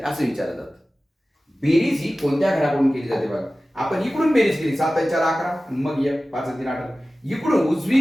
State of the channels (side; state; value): both; normal; correlation 0.96